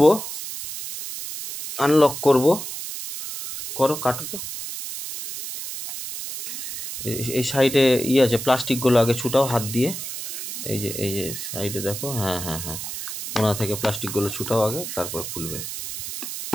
আনলক করব। করো, কাটো তো। এই সাইডে আছে প্লাস্টিকগুলো, আগে ছুটাও হাত দিয়ে। এই যে সাইডে দেখো, হ্যাঁ, কোনা থেকে প্লাস্টিকগুলো ছুটাও আগে, তারপর খুলবে।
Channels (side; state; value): right; noise; hiss, 7 dB below the sound